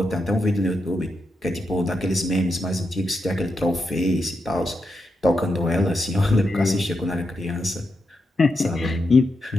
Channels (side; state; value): both; normal; correlation 0.85